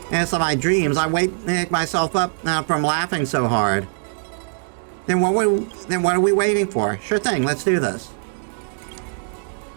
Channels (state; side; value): silent; left; digital silence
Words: of my dreams, I wake myself up from laughing so hard. Then what are we waiting for? Sure thing, let's do this.